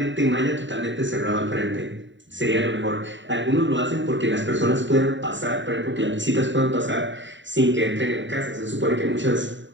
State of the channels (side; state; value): left; late; 0.54 ms